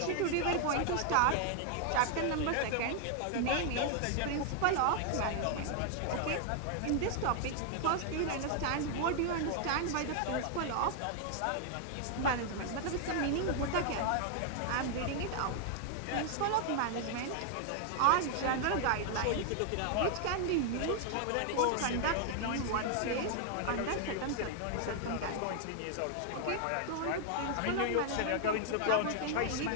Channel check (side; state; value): both; different; correlation 0.00